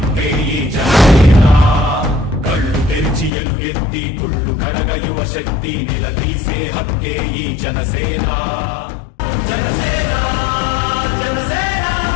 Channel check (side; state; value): right; drops out; at 3.3 s